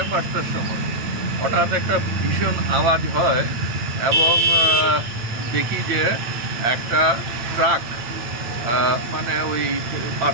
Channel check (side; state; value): left; late; 8.7 ms